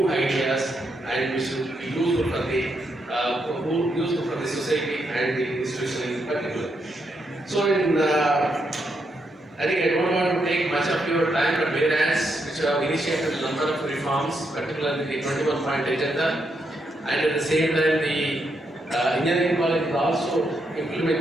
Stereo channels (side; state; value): both; normal; correlation 0.80